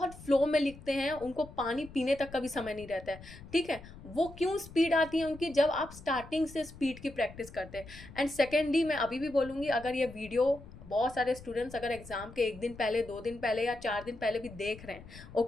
फ्लो में लिखते हैं, उनको पानी पीने तक का भी समय नहीं रहता है, ठीक है। वो क्यों स्पीड आती है उनकी? जब आप स्टार्टिंग से स्पीड की प्रैक्टिस करते हैं। एंड सेकेंडली, मैं अभी भी बोलूँगी, अगर ये वीडियो बहुत सारे स्टूडेंट्स अगर एग्जाम के 1 दिन पहले, 2 दिन पहले या 4 दिन पहले भी देख रहे हैं,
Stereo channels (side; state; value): left; noise; rumble, 17 dB below the sound